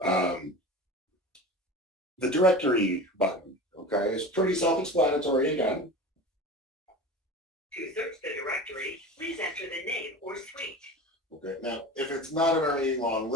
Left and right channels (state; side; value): normal; both; correlation 0.32